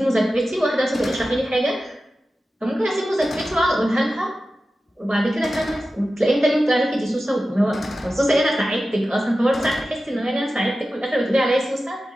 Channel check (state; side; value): normal; both; correlation 0.94